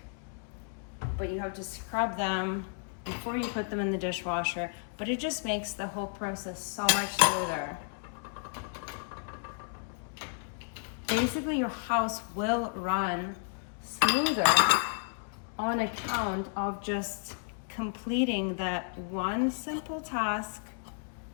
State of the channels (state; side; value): silent; right; 56 dB below the other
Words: but you have to scrub them before you put them in the dishwasher, but it just makes the whole process so much smoother. Basically, your house will run smoother on account of just completing that one simple task